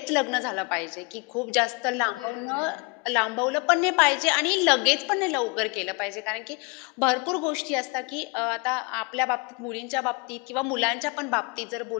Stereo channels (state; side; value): quieter; right; 29.6 dB